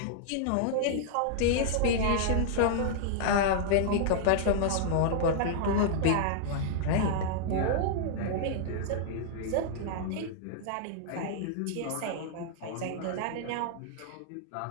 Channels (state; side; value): different; both; correlation -0.01